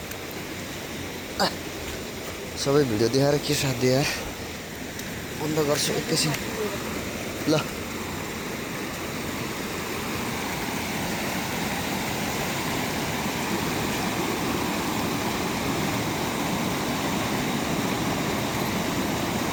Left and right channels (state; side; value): identical; both; correlation 1.00